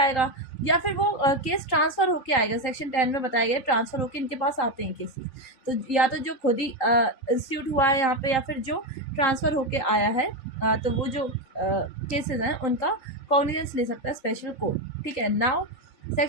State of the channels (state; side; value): late; right; 3.8 ms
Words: या फिर वो केस ट्रांसफ़र होके आएगा। सेक्शन 10 में बताया गया ट्रांसफ़र होके इनके पास आते हैं केसेस, तो या तो जो खुद ही इंस्टीट्यूट हुआ है यहाँ पे, या फिर जो ट्रांसफ़र होके आया है, तो वो जो केसेस हैं उनका कॉग्निजेंस ले सकता है स्पेशल कोर्ट, ठीक है। नाउ